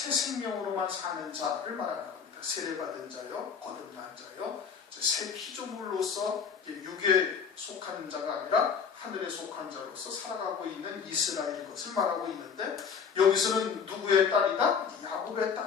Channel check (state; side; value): quieter; right; 6.5 dB